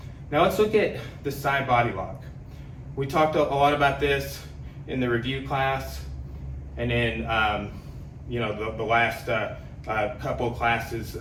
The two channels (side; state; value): both; identical; correlation 1.00